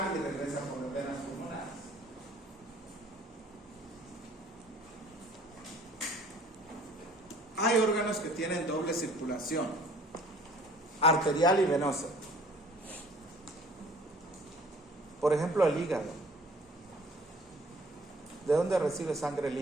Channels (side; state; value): both; normal; correlation 0.53